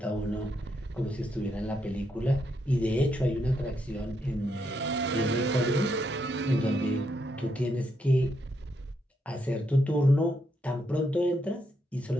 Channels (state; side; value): normal; both; correlation 0.79